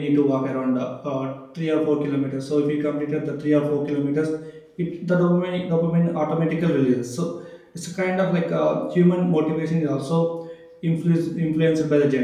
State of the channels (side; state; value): both; identical; correlation 1.00